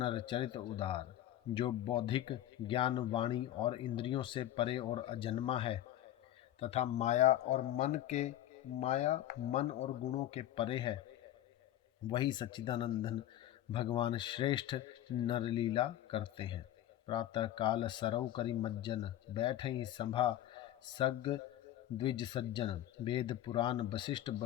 चरित उदार। जो बौद्धिक ज्ञान वाणी और इंद्रियों से परे और अजन्मा है तथा माया मन और गुणों के परे है, वही सच्चिदानंदन भगवान श्रेष्ठ नरलीला करते हैं। प्रातः काल सरौ करि मज्जन, बैठई सभा सग द्विज सज्जन। वेद पुराण वशिष्ठ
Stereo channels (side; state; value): right; quieter; 12.8 dB